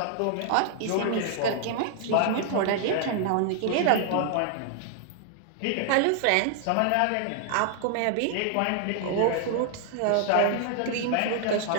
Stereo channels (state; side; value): different; both; correlation 0.00